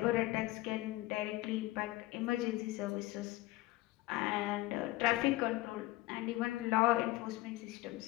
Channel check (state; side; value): quieter; right; 18.3 dB